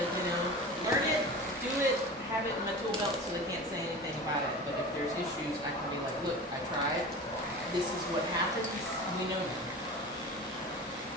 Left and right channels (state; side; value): normal; both; correlation 0.33